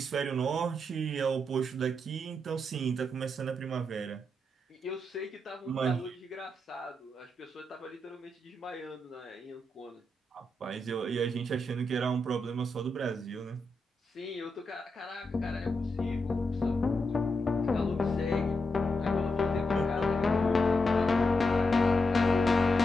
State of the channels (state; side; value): normal; both; correlation 0.85